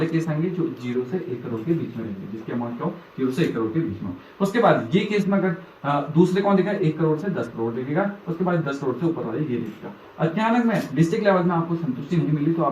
केस आएंगे जो 0 से 1 करोड़ के बीच में रहेंगे, जिसकी अमाउंट क्या हो 0 से 1 करोड़ के बीच में हो। उसके बाद ये केस में अगर दूसरे कौन देखेगा, 1 करोड़ से 10 करोड़ देखेगा, उसके बाद 10 करोड़ से ऊपर वाले ये देखेगा। अचानक में डिस्ट्रिक्ट लेवल में आपको संतुष्टि नहीं मिली तो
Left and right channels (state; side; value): identical; both; correlation 1.00